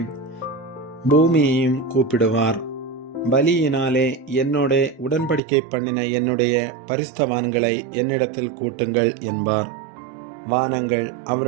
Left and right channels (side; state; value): left; drops out; at 5.4 s